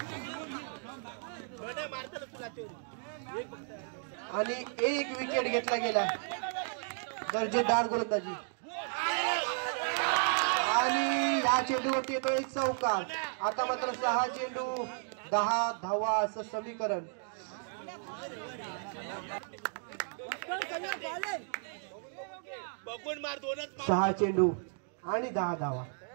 आणि 1 विकेट घेतला गेला. दर्जेदार गोलंदाजी. आणि या चेंडूवरती येतोय चौकार. आता मात्र 6 चेंडू 10 धावा असं समीकरण. बघून मार, 2च मार. 6 चेंडू आणि 10 धावा.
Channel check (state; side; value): silent; left; 55 dB below the other